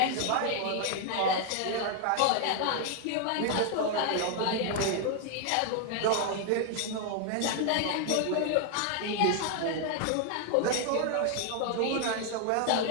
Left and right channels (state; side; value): different; both; correlation 0.00